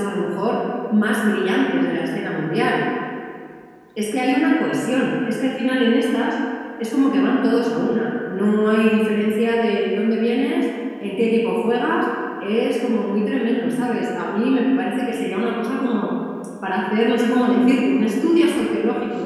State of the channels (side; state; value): both; identical; correlation 1.00